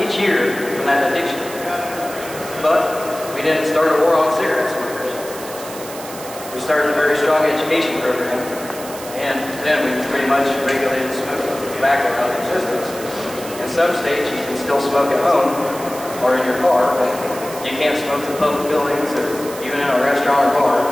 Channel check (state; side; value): noise; right; hiss, 13 dB below the sound